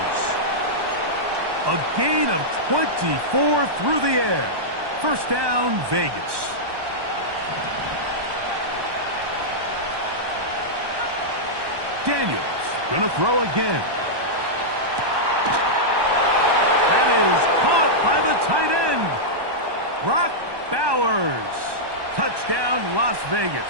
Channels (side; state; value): left; late; 1.2 ms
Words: A gain of 24 through the air. 1st down, Vegas. Daniels going to throw again. That is caught by the tight end. Brock Bowers. Touchdown, Las Vegas.